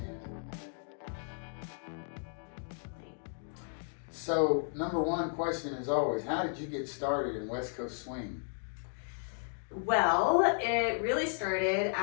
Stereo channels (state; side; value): silent; right; digital silence